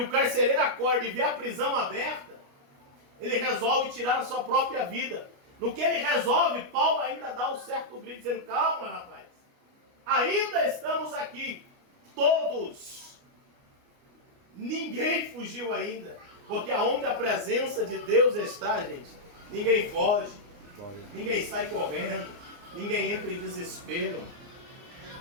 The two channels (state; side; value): late; left; 29 ms